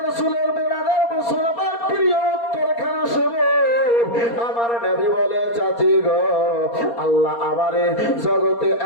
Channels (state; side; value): late; right; 4.3 ms